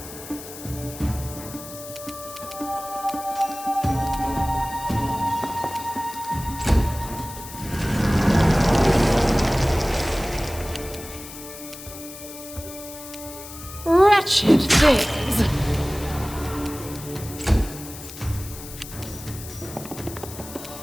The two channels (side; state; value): left; noise; hiss, 13 dB below the sound